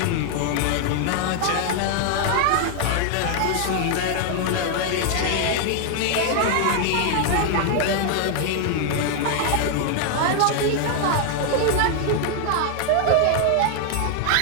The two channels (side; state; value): both; different; correlation 0.00